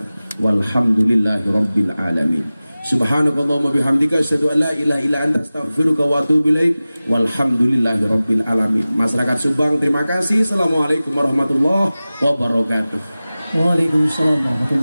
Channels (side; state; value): both; inverted; correlation -0.97